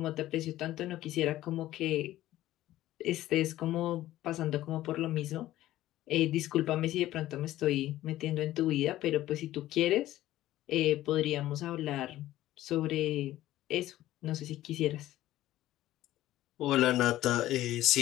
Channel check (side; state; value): right; quieter; 14.7 dB